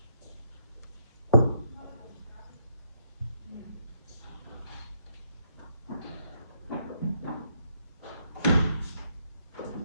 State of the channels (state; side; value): inverted; both; correlation -0.74